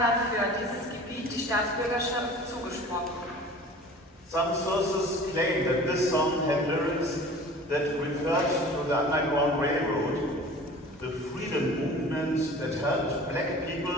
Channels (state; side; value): normal; both; correlation 0.43